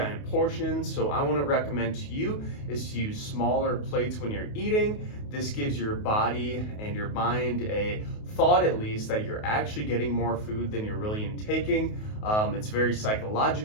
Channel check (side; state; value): right; late; 28 ms